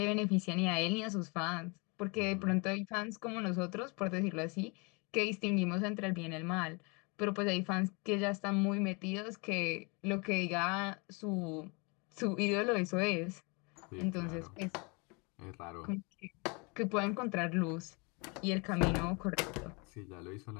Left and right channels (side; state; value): right; quieter; 30.6 dB